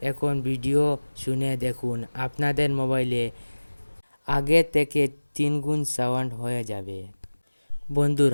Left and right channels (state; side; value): inverted; both; correlation -1.00